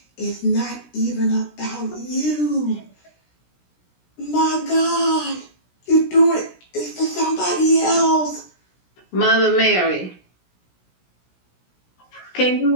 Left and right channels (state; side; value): late; right; 17 ms